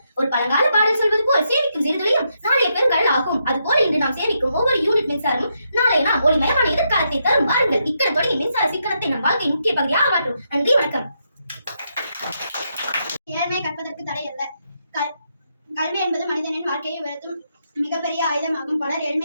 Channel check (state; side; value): inverted; both; correlation -0.80